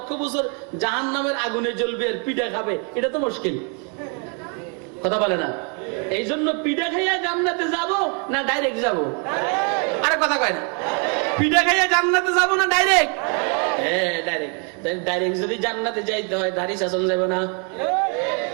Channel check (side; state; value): left; quieter; 37.8 dB